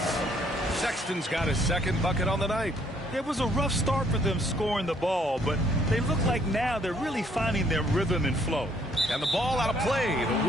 Sexton's got his second bucket on the night. It was a rough start for them scoring the ball, but they look like now they're really finding their rhythm and flow. And the ball out of play.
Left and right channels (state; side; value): normal; both; correlation 0.66